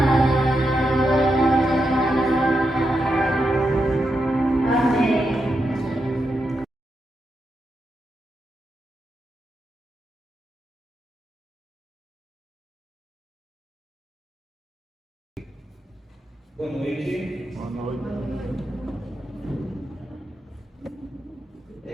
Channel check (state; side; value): normal; both; correlation 0.85